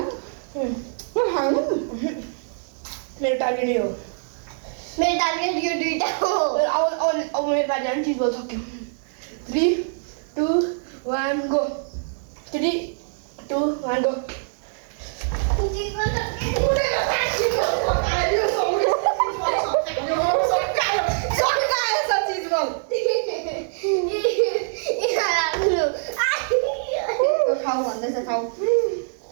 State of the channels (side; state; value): left; silent; digital silence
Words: मेरो टार्गेट यो मेरो टार्गेट यो दुईटा हो अब मेरो पालि अनि चिज बोल सक्यो 3 2 1 गो 3 2 1 गो खाऊ भन्दैछ खाऊ